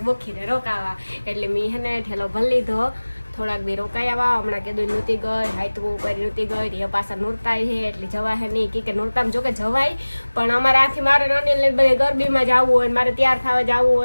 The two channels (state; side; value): inverted; both; correlation -1.00